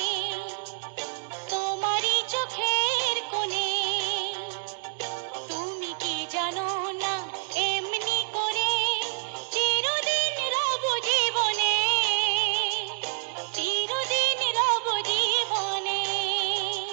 তোমারই চোখের কোণে, তুমি কি জানো না এমনি করে চিরদিন রব জীবনে, চিরদিন রব জীবনে।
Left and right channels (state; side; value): silent; left; digital silence